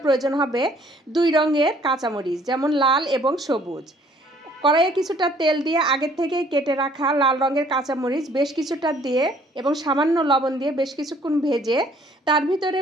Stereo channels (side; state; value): both; normal; correlation 0.60